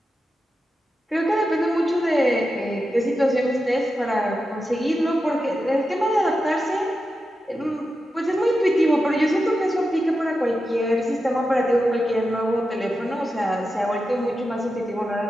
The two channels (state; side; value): normal; both; correlation 0.90